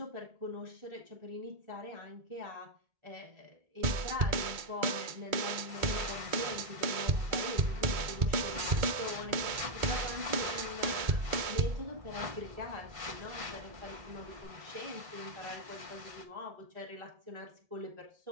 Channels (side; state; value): left; late; 2.2 ms